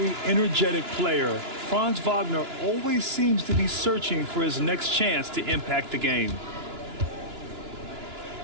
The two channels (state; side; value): late; left; 2.9 ms